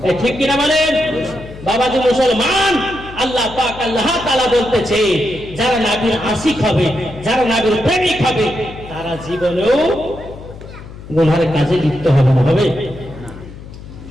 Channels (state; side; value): noise; left; hum, 15 dB below the sound